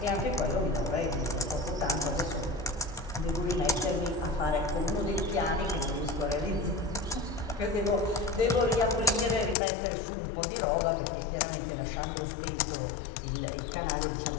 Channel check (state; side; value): drops out; right; at 9.6 s